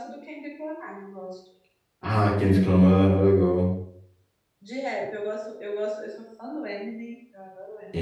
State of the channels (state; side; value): identical; both; correlation 1.00